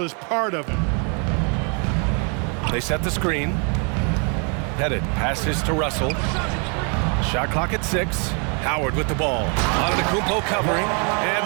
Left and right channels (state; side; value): quieter; left; 37.2 dB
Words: is part of him. They set the screen. Pettit passes to Russell. Shot clock at 6. Howard with the ball. Antetokounmpo covering.